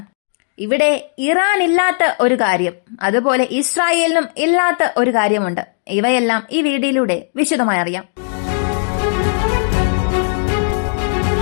ഇവിടെ ഇറാൻ ഇല്ലാത്ത ഒരു കാര്യം, അതുപോലെ ഇസ്രായേലിനും ഇല്ലാത്ത ഒരു കാര്യമുണ്ട്. ഇവയെല്ലാം ഈ വീഡിയോയിലൂടെ വിശദമായി അറിയാം.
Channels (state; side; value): silent; right; digital silence